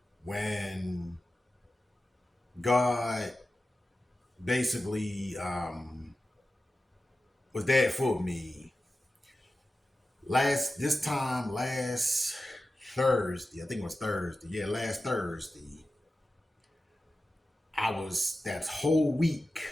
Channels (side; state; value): both; normal; correlation 0.93